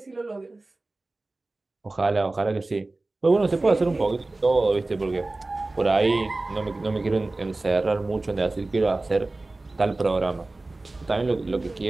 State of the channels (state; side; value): quieter; left; 3.1 dB